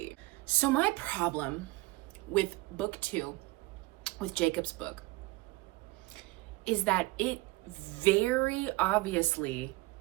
So my problem with book 2, with Jacob's book, is that it very obviously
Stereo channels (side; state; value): left; quieter; 21.1 dB